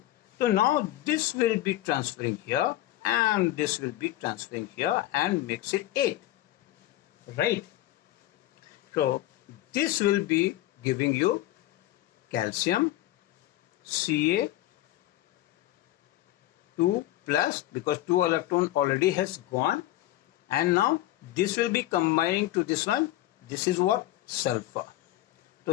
So now this will be transferring here and this will be transferring here and makes it 8. Right? So this will be giving you calcium Ca 2 plus because 2 electron already has gone and now this will be combining to this one. This is what? Sulfur. So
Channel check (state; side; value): quieter; right; 15.2 dB